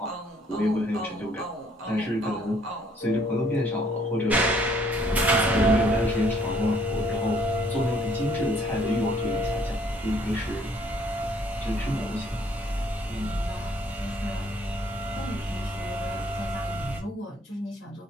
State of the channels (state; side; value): normal; both; correlation 0.63